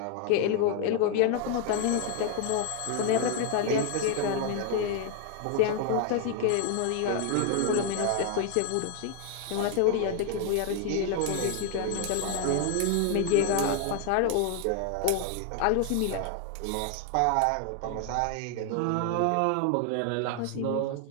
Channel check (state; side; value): different; both; correlation 0.00